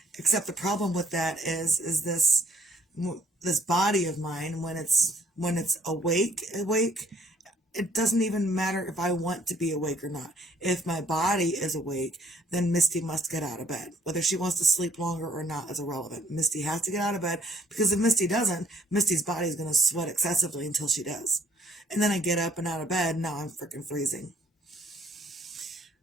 Except the problem with that is this body of mine, when it's awake, it doesn't even matter if I want to be awake or not. If my body is awake, then Misty must get out of bed. Whether she wants to sleep longer or not is irrelevant. Misty has to get out of bed, because if Misty doesn't, Misty's body is going to sweat excessively until she does. And then I get up and out of bed, and now I'm freaking freezing.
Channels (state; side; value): normal; both; correlation 0.61